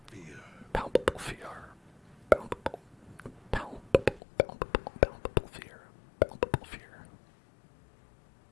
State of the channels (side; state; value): right; drops out; at 4.2 s